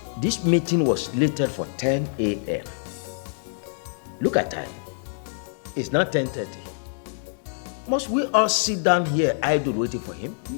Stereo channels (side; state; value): right; silent; 61 dB below the other